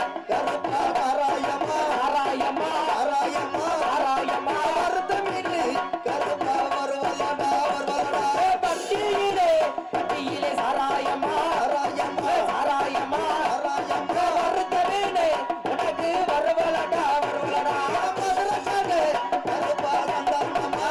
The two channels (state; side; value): identical; both; correlation 1.00